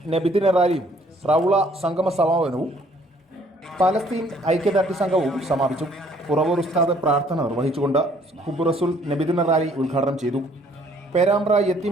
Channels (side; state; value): both; normal; correlation 0.61